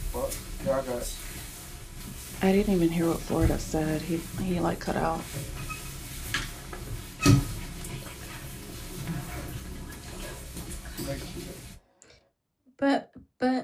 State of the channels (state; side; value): identical; both; correlation 1.00